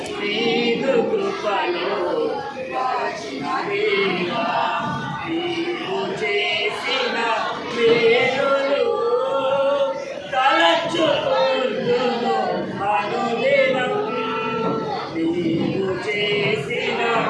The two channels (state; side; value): identical; both; correlation 1.00